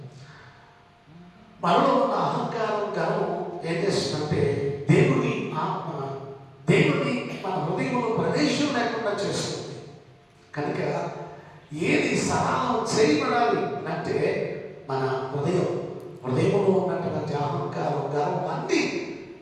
మనలో ఉన్న అహంకారం గర్వం ఏం చేస్తుందంటే దేవుని ఆత్మ మన హృదయంలో ప్రవేశం లేకుండా చేస్తుంది. కనుక ఏది సరళం చేయబడాలి అంటే మన హృదయంలో ఉన్నటువంటి అహంకారం గర్వం అన్నీ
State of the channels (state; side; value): identical; both; correlation 1.00